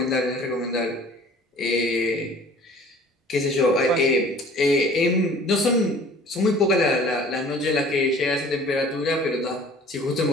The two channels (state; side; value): normal; both; correlation 0.49